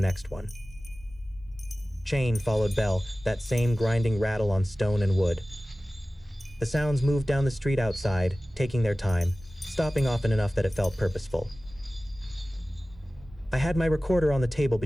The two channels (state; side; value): normal; both; correlation 0.97